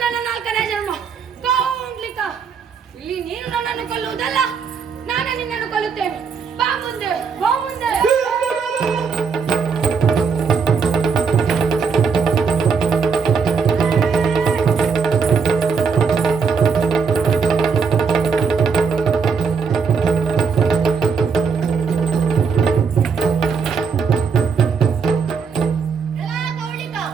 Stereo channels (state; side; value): quieter; left; 5.7 dB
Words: ನನ್ನ ನಾಲ್ಕನೇ ಜನ್ಮ. ಕೌಂಡ್ಲಿಕ, ಇಲ್ಲಿ ನೀನು ನನ್ನನ್ನು ಕೊಲ್ಲುವುದಲ್ಲ, ನಾನು ನಿನ್ನನ್ನು ಕೊಲ್ಲುತ್ತೇನೆ. ಬಾ ಮುಂದೆ, ಬಾ ಮುಂದೆ.